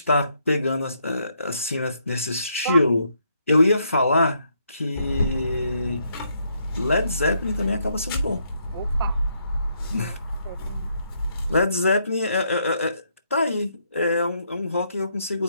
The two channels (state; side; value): inverted; both; correlation -0.75